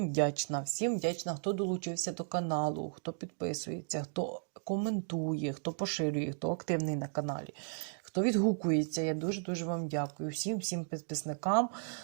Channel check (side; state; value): left; silent; digital silence